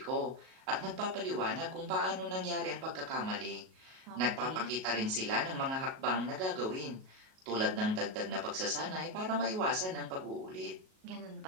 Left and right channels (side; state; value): left; late; 38 ms